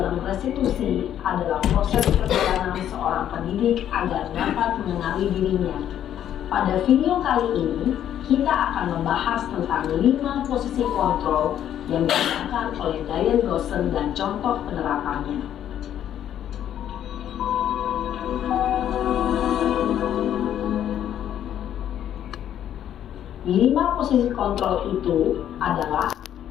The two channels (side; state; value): right; quieter; 10.5 dB